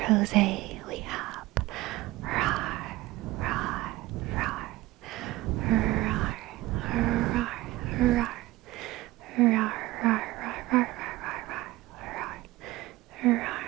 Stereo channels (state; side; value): quieter; left; 18.3 dB